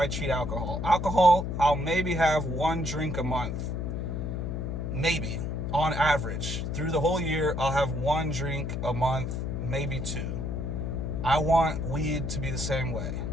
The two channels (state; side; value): noise; left; hum, 3 dB below the sound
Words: treat alcohol. Alcohol, I'll maybe have 1 drink a month. Maybe, on average. Through the whole year, I'll have 1 drink a month, maybe 2. I want weed to be the same way.